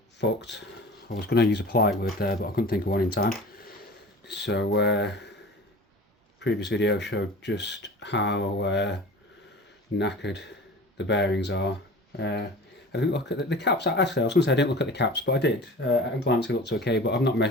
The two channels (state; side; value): normal; both; correlation 0.38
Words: fucked. I was going to use a polite word there, but I couldn't think of one in time. So, previous video showed just how knackered the bearings are. I didn't look at the caps. Actually, I was going to say I didn't look at the caps, but I did. At a glance, it looks okay, but I've not